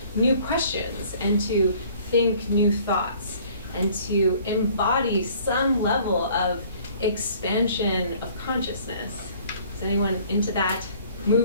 new questions and to think new thoughts and to embody some level of expansion of consciousness. Is anyone into that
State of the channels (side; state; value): both; inverted; correlation -0.55